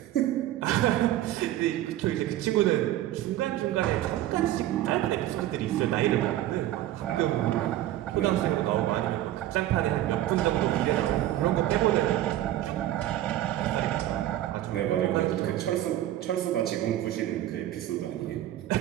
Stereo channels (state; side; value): quieter; left; 13.7 dB